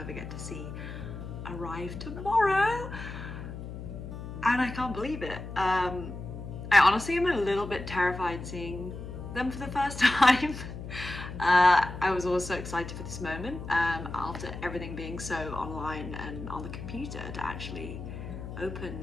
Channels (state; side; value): noise; left; hum, 9 dB below the sound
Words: get to see, arrive tomorrow. And I can't believe it. I honestly am a little bit terrified seeing them for the first time. I was also excited for this moment after everything being so online and on the computer. To actually